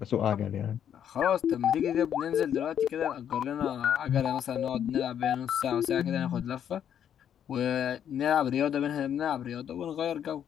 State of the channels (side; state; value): right; quieter; 9.3 dB